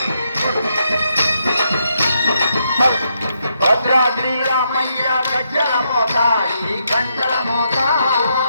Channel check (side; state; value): both; inverted; correlation -0.79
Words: భద్రాద్రి రామయ్య గజ్జల మోత ఈ గంటల మోత